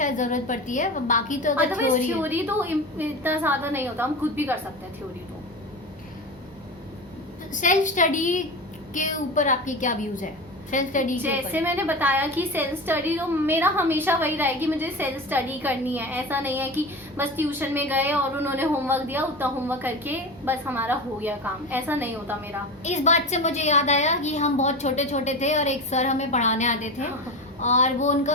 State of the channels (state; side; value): normal; both; correlation 0.27